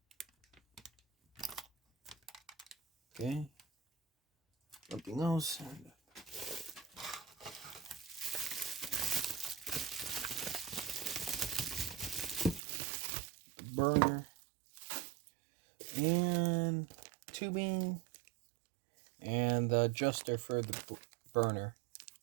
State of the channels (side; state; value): left; drops out; at 12.6 s